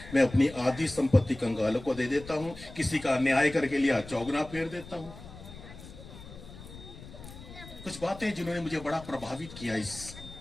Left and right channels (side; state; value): left; noise; rumble, 16 dB below the sound